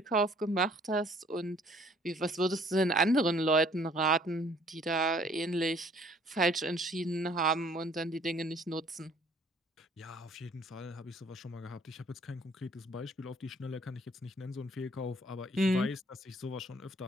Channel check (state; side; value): normal; both; correlation 0.58